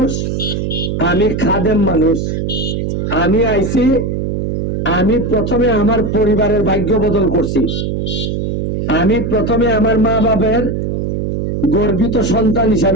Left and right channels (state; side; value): noise; right; hum, 1 dB below the sound